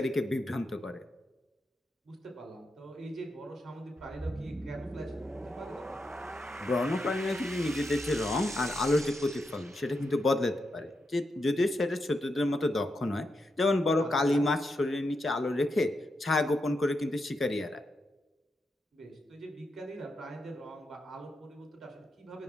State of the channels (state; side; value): normal; both; correlation 0.85